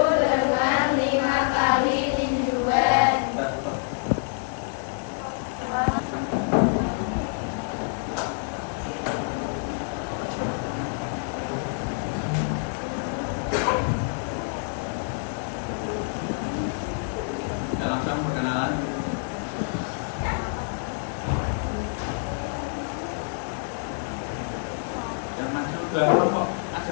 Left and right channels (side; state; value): right; silent; 60 dB below the other